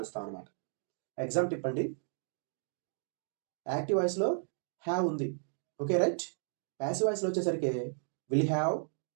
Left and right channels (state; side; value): silent; left; digital silence